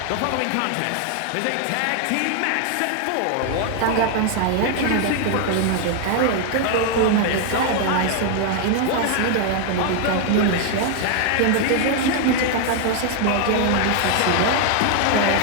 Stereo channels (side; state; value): both; different; correlation 0.00